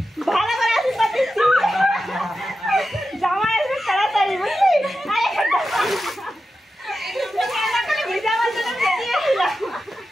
ভালো করে আসি পাচ্ছি জামা আসবে তাড়াতাড়ি, বুঝলি?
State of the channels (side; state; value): both; normal; correlation 0.91